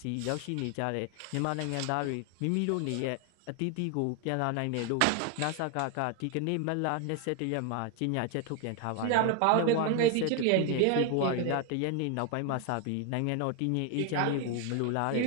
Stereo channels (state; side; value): different; both; correlation 0.01